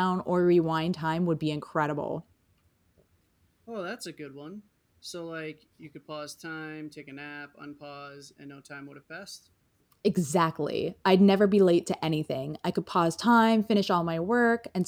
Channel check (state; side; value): identical; both; correlation 1.00